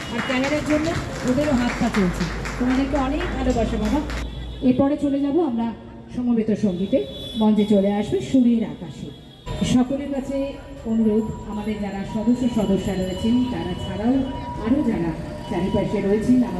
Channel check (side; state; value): both; identical; correlation 1.00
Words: আর ক্যামেরার জন্য ওদেরও হাত পা চলছে। তোমাদেরকে অনেক ভালোবাসা বাবা। এরপরে চলে যাব আমরা সমবেত সঙ্গীতে। মঞ্চে চলে আসবে সুরের আকাশে। সকলের কাছে অনুরোধ, আমাদের যারা সদস্যরা রয়েছেন তারা ছাড়াও আরও যারা চারিপাশে রয়েছেন